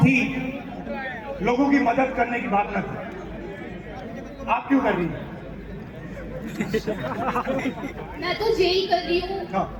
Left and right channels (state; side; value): identical; both; correlation 1.00